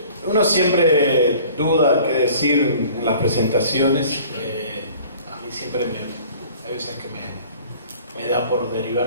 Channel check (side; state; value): both; inverted; correlation -0.49